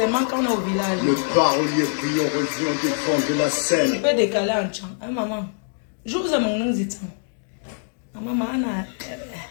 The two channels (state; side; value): silent; right; 62 dB below the other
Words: quand on est au village. Le parolier brillant revient défendre de la scène. Tu peux décaler en chant. Hein, maman? Je vous ai mon nom dit. Maman,